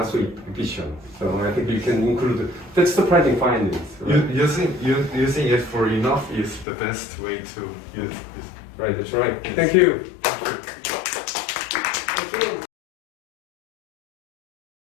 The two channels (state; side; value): drops out; right; at 6.7 s